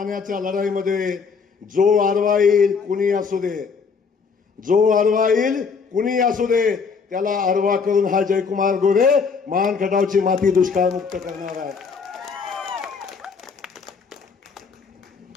लढाईमध्ये जो आडवा येईल कुणी असू दे, जो आडवा येईल कुणी असू दे, त्याला आडवा करून हा जयकुमार गोरे मान खटावची माती दुष्काळमुक्त करणार आहे.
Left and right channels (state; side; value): quieter; right; 5.4 dB